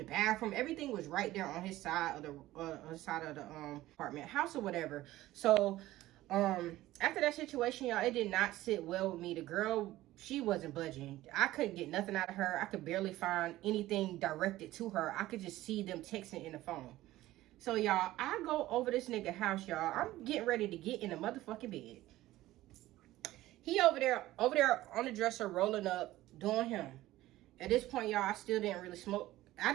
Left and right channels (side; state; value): left; quieter; 16.1 dB